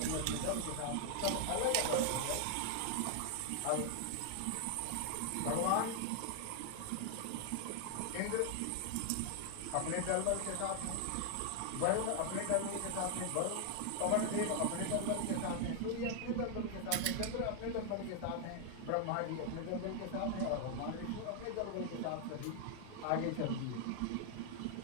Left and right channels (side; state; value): both; different; correlation 0.00